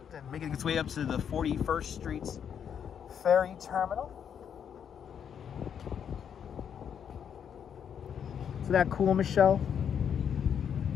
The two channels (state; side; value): quieter; right; 8.1 dB